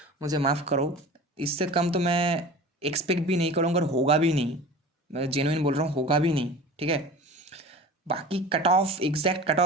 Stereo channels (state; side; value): normal; both; correlation 0.37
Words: मुझे माफ़ करो, इससे कम तो मैं एक्सपेक्ट भी नहीं करूँगा और होगा भी नहीं, मैं जेन्युइन बोल रहा हूँ, होगा भी नहीं, ठीक है। बाकी cut off, exact cut